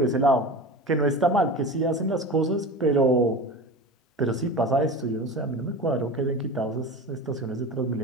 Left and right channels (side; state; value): both; normal; correlation 0.31